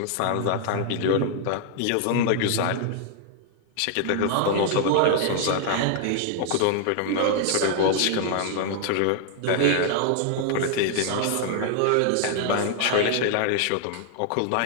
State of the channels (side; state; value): both; different; correlation 0.00